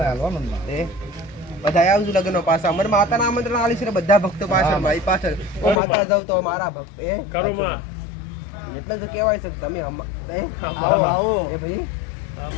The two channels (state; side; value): drops out; right; at 5.8 s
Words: હાલવાનું બધા આવજો લગ્ન પાછા. મને માતાના આમંત્રણ આલી છે ને બધા ભક્તો પાછળ મારી પાછળ. ઓ માતા જાવ તો મારા ભક્ત કરોમાં એટલે તો કહેવાય છે તમે આવો આવો એ ભાઈ.